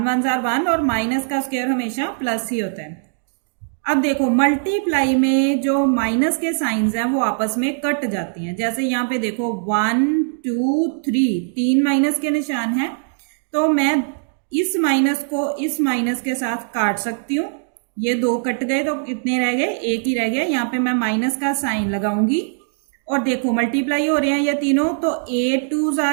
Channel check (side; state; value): left; silent; digital silence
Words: 1s आर 1, और माइनस का स्क्वायर हमेशा प्लस ही होता है। अब देखो मल्टीप्लाई में जो माइनस के साइंस हैं वो आपस में कट जाती हैं। जैसे यहाँ पे देखो 1 2 3 3 माइनस के निशान हैं, तो मैं इस माइनस को इस माइनस के साथ काट सकती हूँ। ये 2 कट गए तो कितने रह गए, 1 ही रह गया। यहाँ पे मैं माइनस का साइन लगाऊंगी, और देखो मल्टीप्लाई हो रहे हैं ये तीनों, तो 8 2s